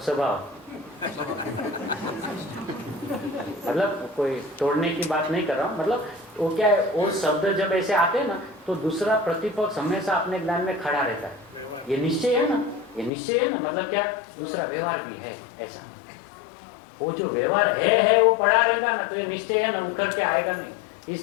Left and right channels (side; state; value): right; drops out; at 13.1 s